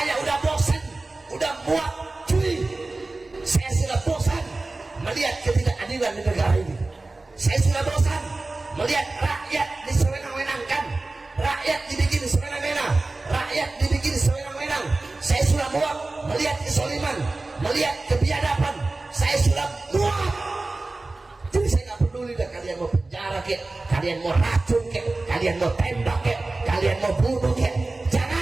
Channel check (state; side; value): quieter; left; 3.2 dB